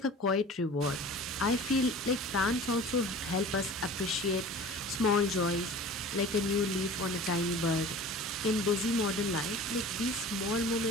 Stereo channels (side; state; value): both; normal; correlation 0.40